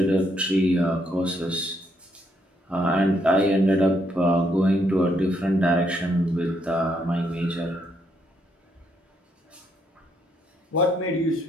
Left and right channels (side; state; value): both; normal; correlation 0.74